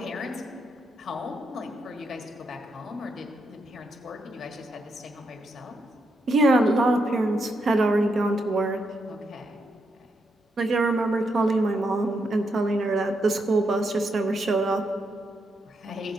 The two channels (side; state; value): both; normal; correlation 0.81